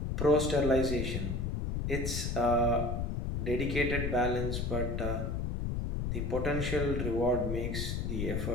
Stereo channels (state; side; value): noise; left; rumble, 1 dB below the sound